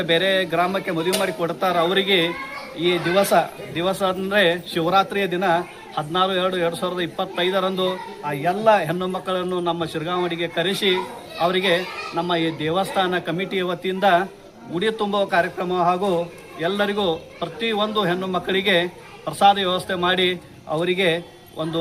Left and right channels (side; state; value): both; identical; correlation 1.00